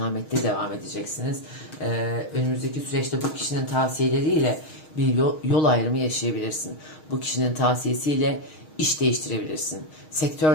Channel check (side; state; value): right; late; 6.4 ms